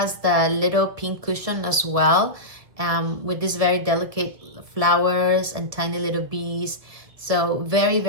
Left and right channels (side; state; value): left; late; 1.7 ms